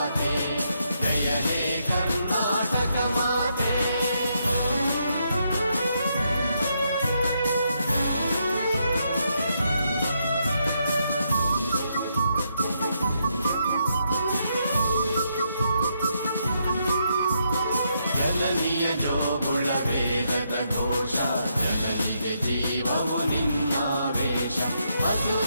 ಜಯ ಹೇ ಕರ್ನಾಟಕ ಮಾತೆ ಜನನಿಯ ಜೋಗುಳ ವೇದದ ಘೋಷ ಜನನಿಗೆ ಜೀವವು ನಿನ್ನಾವೇಶ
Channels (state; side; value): inverted; both; correlation -0.78